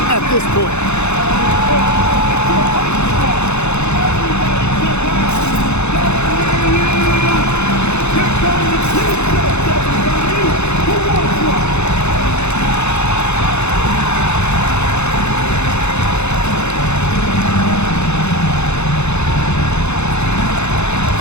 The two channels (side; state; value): right; late; 0.81 ms